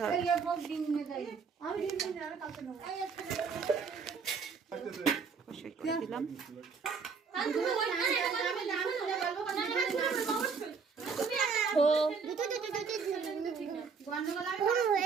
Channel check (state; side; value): quieter; left; 5.5 dB